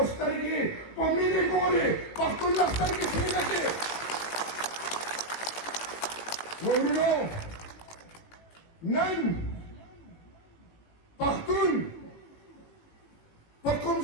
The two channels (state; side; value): late; right; 18 ms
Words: سترګې په مینې ګوري پښتون له سترګې سینه کې ورونو نن پښتون په کوم